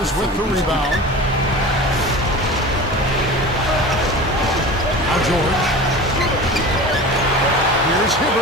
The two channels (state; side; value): normal; both; correlation 0.34